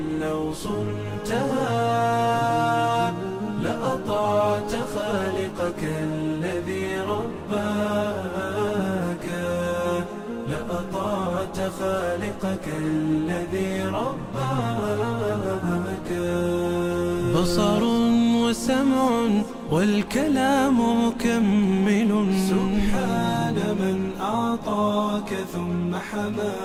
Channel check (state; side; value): identical; both; correlation 1.00